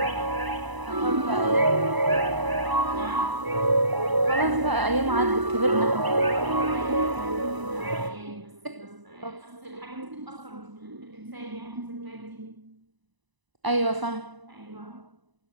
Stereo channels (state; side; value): late; left; 1.0 ms